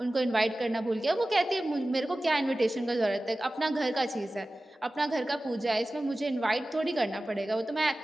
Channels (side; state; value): both; normal; correlation 0.96